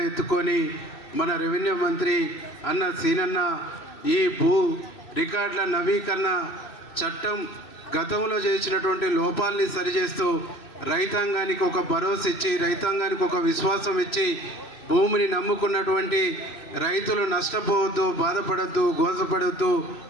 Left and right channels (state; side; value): late; right; 3.0 ms